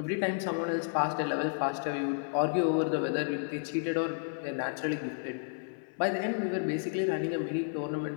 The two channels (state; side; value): silent; right; 57 dB below the other